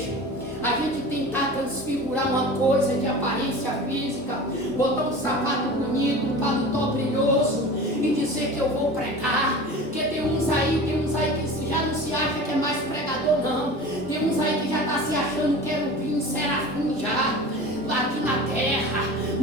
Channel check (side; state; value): both; normal; correlation 0.35